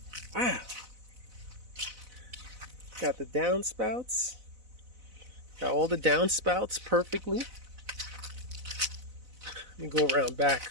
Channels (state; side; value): late; left; 4.0 ms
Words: Wow. Got the downspouts. Got all the downspouts perfectly. Let me go around